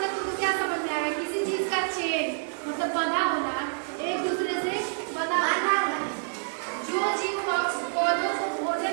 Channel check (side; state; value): left; silent; digital silence